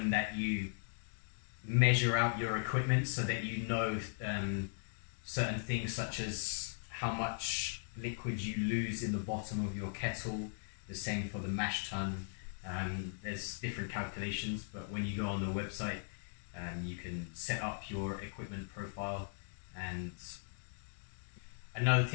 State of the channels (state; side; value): silent; right; digital silence